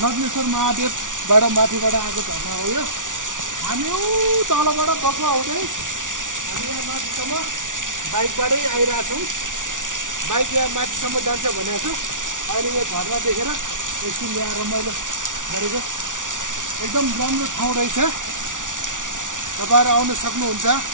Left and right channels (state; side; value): late; left; 0.87 ms